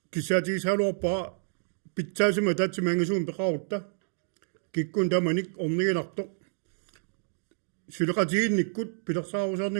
кисаатигисаалуарпаа питсаасима таатсимаангасуун пеқарутта киккун таманик орнигинарто сулеқатигинниккут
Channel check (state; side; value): silent; left; digital silence